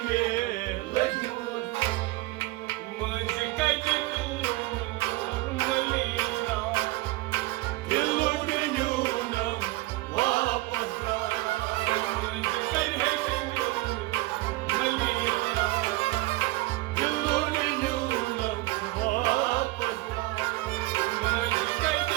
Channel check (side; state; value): left; quieter; 20.4 dB